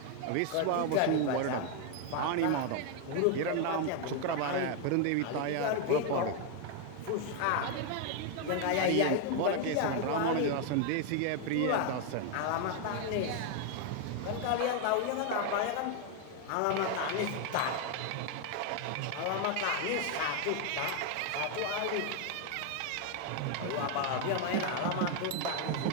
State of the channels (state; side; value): different; both; correlation 0.01